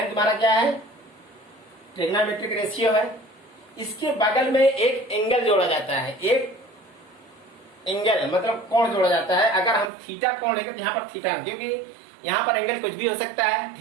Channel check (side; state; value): left; drops out; at 9.9 s